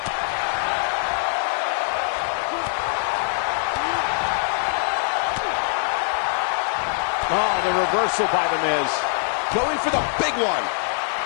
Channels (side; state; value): right; silent; digital silence